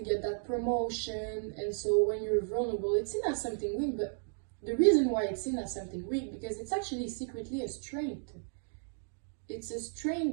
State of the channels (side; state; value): left; silent; digital silence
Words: that promotion. And so when you're vulnerable, it's seen as something weak. But the reason why it's seen as something weak, because it's actually secretly a strength. It's a